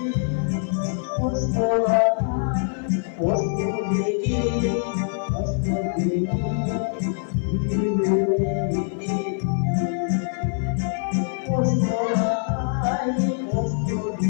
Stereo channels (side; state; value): right; silent; 59 dB below the other